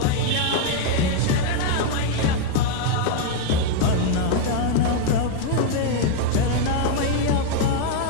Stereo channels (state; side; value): different; both; correlation 0.00